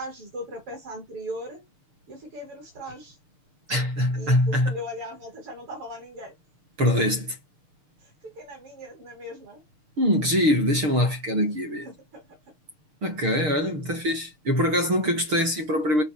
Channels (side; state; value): left; late; 6.6 ms